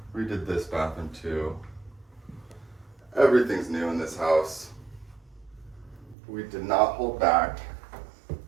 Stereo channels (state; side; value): drops out; left; at 6.2 s